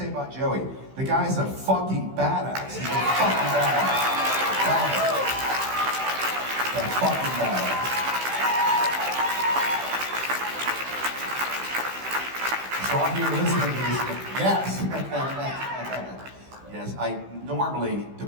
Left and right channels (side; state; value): left; late; 15 ms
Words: about Joey? The guy's a fucking badass. He's a fucking badass. He's a fucking badass. So I'm here listening to this. Yes. Yes, I normally